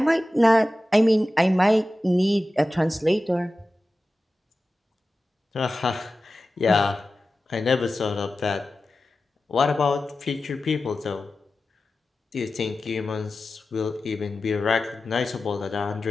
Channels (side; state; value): both; normal; correlation 0.94